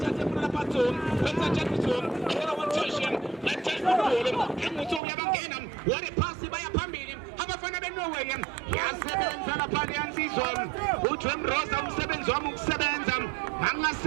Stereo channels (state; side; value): drops out; left; at 5.0 s